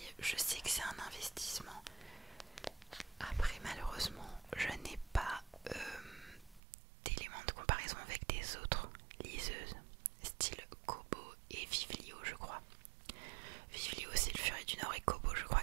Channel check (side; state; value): left; drops out; at 6.6 s